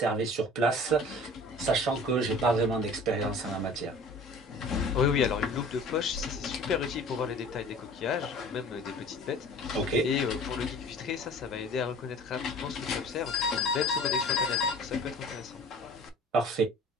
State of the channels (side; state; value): both; normal; correlation 0.44